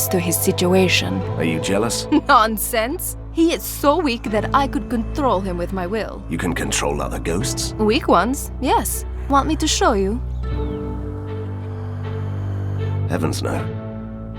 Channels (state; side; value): identical; both; correlation 1.00